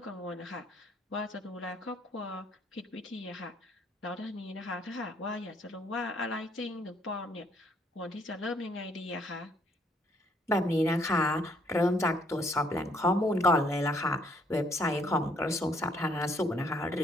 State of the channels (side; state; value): both; normal; correlation 0.66